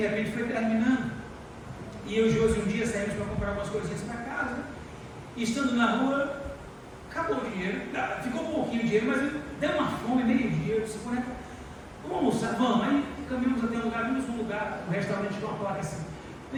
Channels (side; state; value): both; identical; correlation 1.00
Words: repente foi terminando. E eu e o Josi um dia saímos para comprar algumas coisinhas para casa. E estando na rua, acabou o dinheiro. Ficou um pouquinho de dinheiro, mas deu uma fome, meio-dia. Eu disse, vamos almoçar, vamos. Aí caminhamos até um lugar, vimos um lugar, um restaurante com uma placa assim,